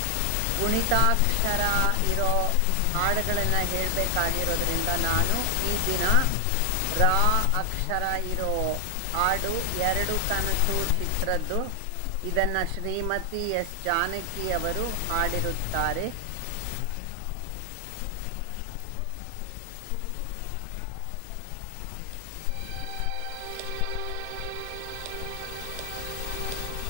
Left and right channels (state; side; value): different; both; correlation 0.00